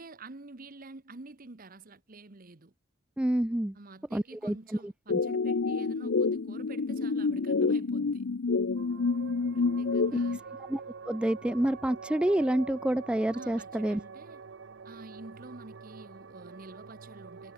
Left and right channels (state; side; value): normal; both; correlation 0.52